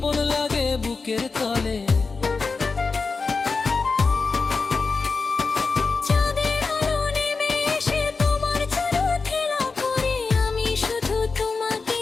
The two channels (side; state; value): right; quieter; 4.4 dB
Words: লাগে বুকের তলে।